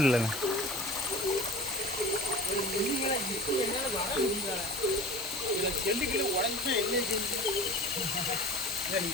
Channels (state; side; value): normal; both; correlation 0.39